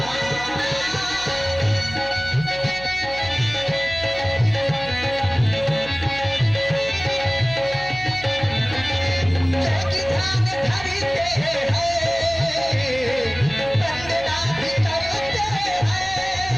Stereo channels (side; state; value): right; noise; hum, 15 dB below the sound